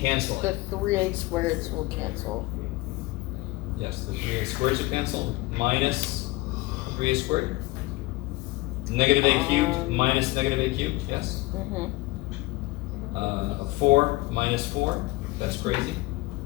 The 3a squareds will cancel. Yes, the 3a squareds will cancel. Minus 3a squared. Negative a cubed minus negative a cubed. Yes. Mm-hmm. 4 minus 4. That's crazy.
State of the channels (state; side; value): quieter; right; 20.9 dB